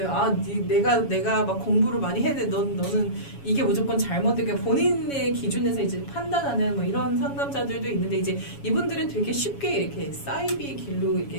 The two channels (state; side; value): late; right; 7.2 ms